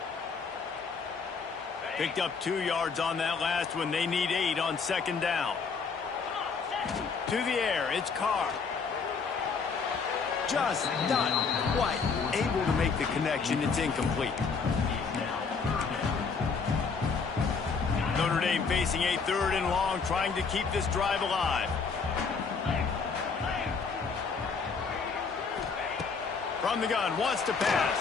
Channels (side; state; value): right; quieter; 5.2 dB